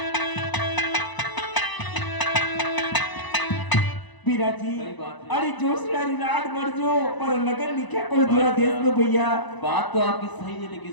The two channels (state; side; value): late; right; 1.0 ms